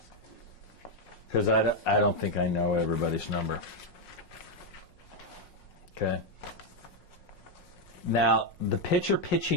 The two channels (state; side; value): late; right; 5.5 ms